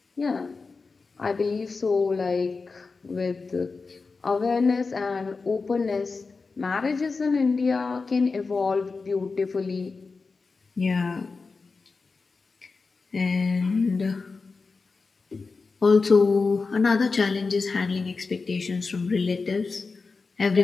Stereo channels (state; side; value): quieter; right; 4.3 dB